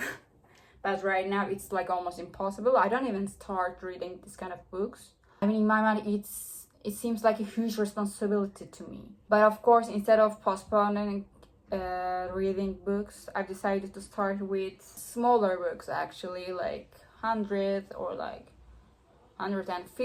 But right now it's like almost impossible. I don't even start reading this kind of books. I mean, in my mind it seems like a huge responsibility to me. But of course, instead of postponing reading books, I've decided to start with smaller books actually, like 100 or like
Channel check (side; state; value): both; identical; correlation 1.00